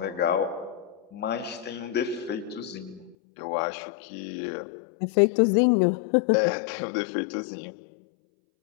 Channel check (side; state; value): right; drops out; at 3.2 s